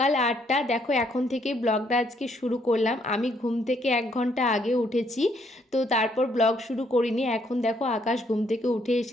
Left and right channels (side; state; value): both; normal; correlation 0.70